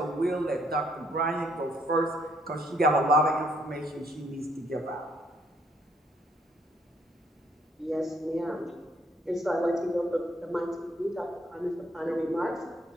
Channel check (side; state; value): both; normal; correlation 0.68